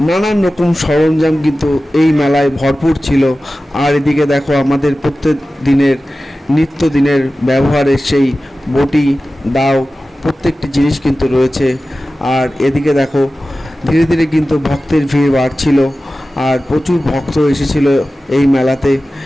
নানান রকম সরঞ্জাম কিন্তু এই মেলায় ভরপুর ছিল। আর এদিকে দেখো আমাদের প্রত্যেক দিনের নিত্যদিনের ব্যবহারের সেই বটি, দাও, প্রত্যেকটি জিনিস কিন্তু রয়েছে। আর এদিকে দেখো ধীরে ধীরে কিন্তু ভক্তের ভিড় বাড়ছিল। আর প্রচুর ভক্ত এসেছিল এই মেলাতে।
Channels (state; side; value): normal; both; correlation 0.95